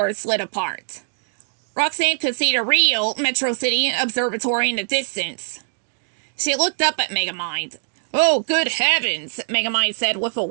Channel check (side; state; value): left; silent; digital silence